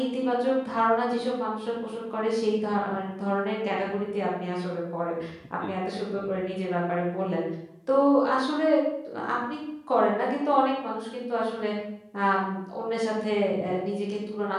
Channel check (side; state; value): both; identical; correlation 1.00